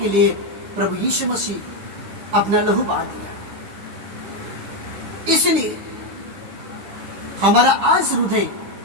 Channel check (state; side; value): late; left; 10 ms